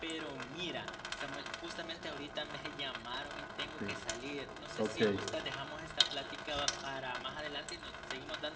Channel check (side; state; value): both; identical; correlation 1.00